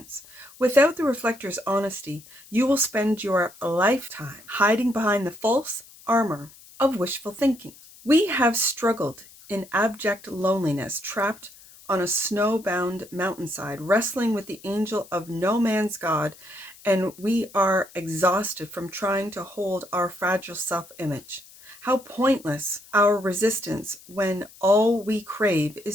Without the reflector's honesty, you will spend your lifetime hiding behind the false armor of wishful thinking. We have struggled in abject loneliness, trapped on a snowbound mountainside, wrestling with the angel of no man's God, and we are exhausted from trying to hold our fragile self-image. How pointless our resistance when all we crave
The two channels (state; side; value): noise; left; hiss, 22 dB below the sound